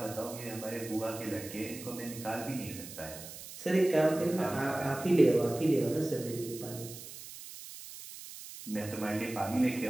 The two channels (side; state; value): right; noise; hiss, 13 dB below the sound